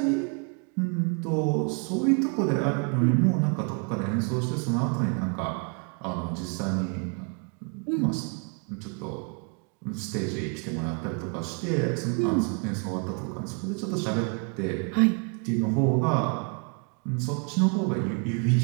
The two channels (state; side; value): quieter; left; 37.8 dB